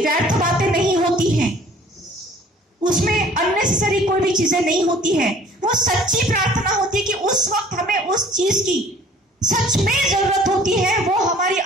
बातें नहीं होती हैं, उसमें अननेसेसरी कोई भी चीजें नहीं होती है। वो सच्ची प्रार्थना होती है कि उस वक्त हमें उस चीज की सच में जरूरत होती है, वो हमारी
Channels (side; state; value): both; normal; correlation 0.52